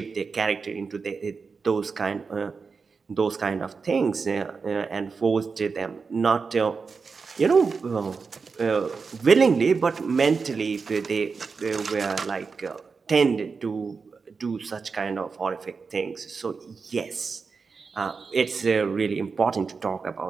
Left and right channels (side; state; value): left; quieter; 5.0 dB